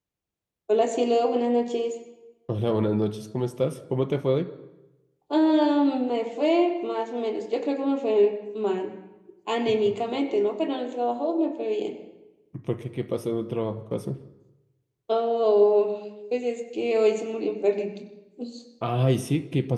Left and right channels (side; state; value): both; identical; correlation 1.00